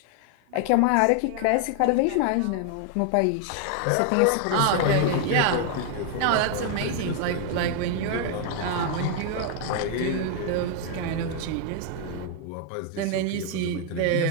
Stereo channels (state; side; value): different; both; correlation 0.00